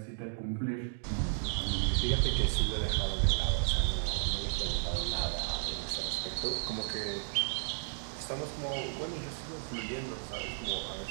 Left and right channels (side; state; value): left; silent; digital silence